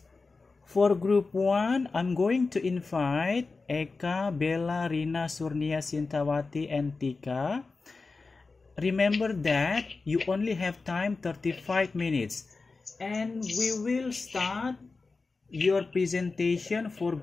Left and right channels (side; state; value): right; quieter; 4.0 dB